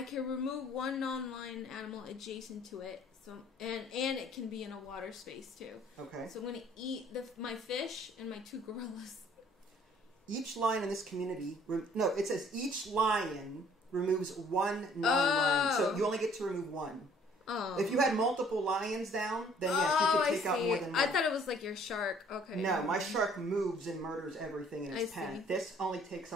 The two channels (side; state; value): both; normal; correlation 0.58